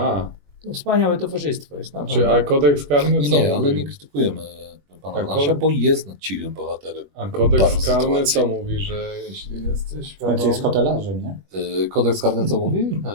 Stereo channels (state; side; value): late; left; 21 ms